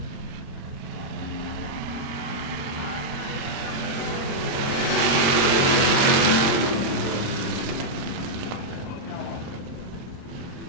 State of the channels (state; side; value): normal; both; correlation -0.04